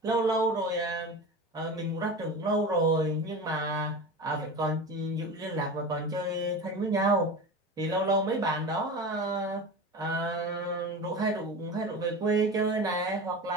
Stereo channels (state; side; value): normal; both; correlation 0.29